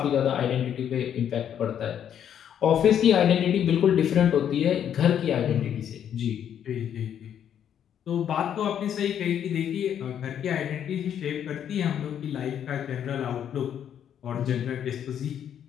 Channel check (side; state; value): right; quieter; 9.3 dB